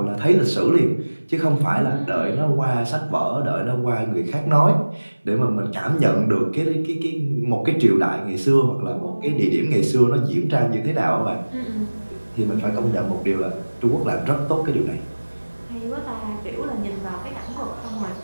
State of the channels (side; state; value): both; inverted; correlation -1.00